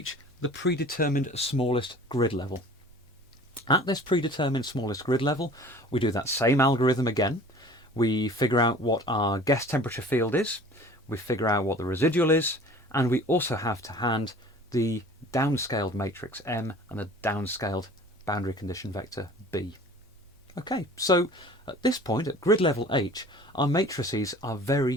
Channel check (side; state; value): both; normal; correlation 0.45